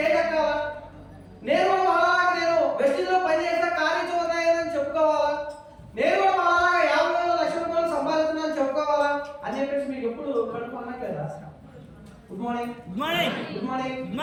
ఎక్కాలా, నేను కూడా అలాగా నేను వెస్టిజ్లో పనిచేసిన కార్యచూర్ణని చెప్పుకోవాలా, నేను కూడా అలాగా 50,000 లక్షల రూపాయలు సంపాదిస్తున్నాను చెప్పుకోవాలా అని చెప్పేసి మీకు ఎప్పుడు కడుపు అనట్లేదా? Good morning. Good morning. Good morning. Good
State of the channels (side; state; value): both; identical; correlation 1.00